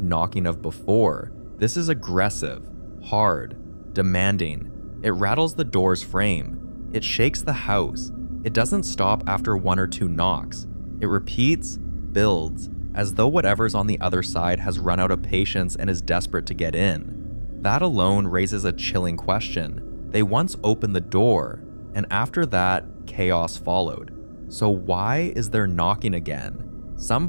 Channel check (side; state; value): both; inverted; correlation -1.00